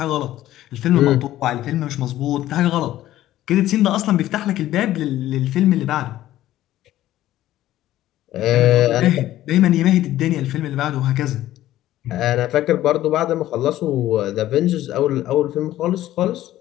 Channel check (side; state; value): right; quieter; 14.1 dB